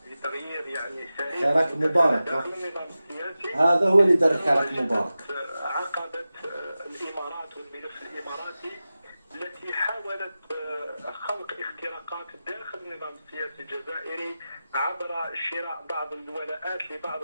بتغيير يعني سريع حراك مبارك داخل النظام السياسي، هذا هو اللي دار حراك مبارك. عقبت الإمارات والملف الإماراتي التي حاولت خلق اختراقات داخل النظام السياسي الجزائري عبر شراء بعض الولاءات لبعض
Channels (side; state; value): both; inverted; correlation -0.94